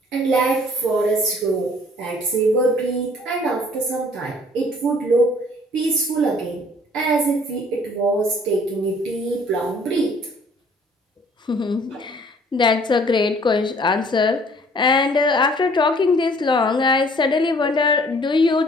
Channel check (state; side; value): normal; both; correlation 0.56